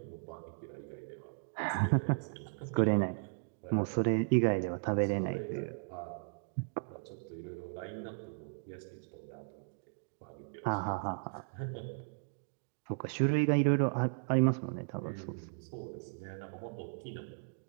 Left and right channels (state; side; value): silent; left; digital silence